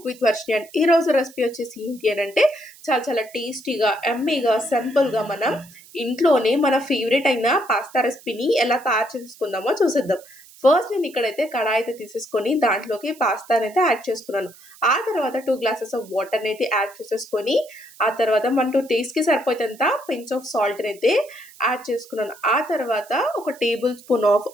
with Varshini. And ఈ రోజు recipe వచ్చేసి ఏంటి అని అంటే చాలా చాలా టేస్టీగా, ఎమ్మీగా, సింపుల్గా మనం ఇంట్లోనే మన ఫేవరెట్ అయిన పాస్తా రెసిపీని ఎలా తయారు చేసుకుందామో చూసేద్దాం. ఫస్ట్ నేను ఇక్కడైతే కడాయి అయితే తీసేసుకొని దాంట్లోకి పాస్తాని అయితే యాడ్ చేసుకున్నాను. ఆ తర్వాత 2 గ్లాసెస్ ఆఫ్ వాటర్ని అయితే యాడ్ చేసేసుకొని ఆ తర్వాత మనకు టేస్ట్కి సరిపోయేంత పించ్ ఆఫ్ సాల్ట్ని అయితే యాడ్ చేసుకున్నాను. ఆ తర్వాత ఒక టేబుల్ స్పూన్ ఆఫ్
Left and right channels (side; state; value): right; noise; hiss, 23 dB below the sound